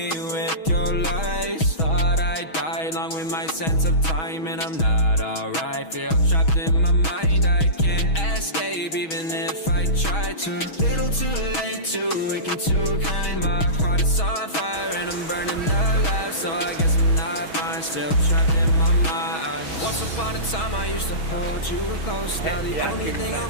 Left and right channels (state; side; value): late; right; 6.2 ms